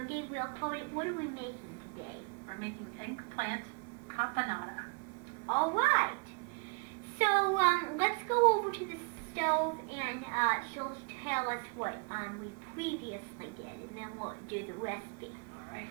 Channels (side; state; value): left; quieter; 34.8 dB